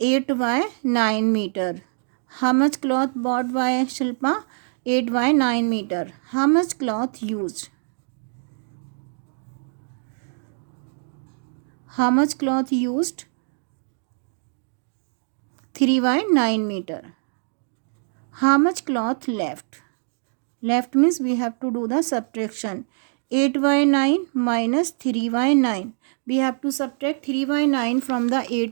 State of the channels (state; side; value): silent; left; 58 dB below the other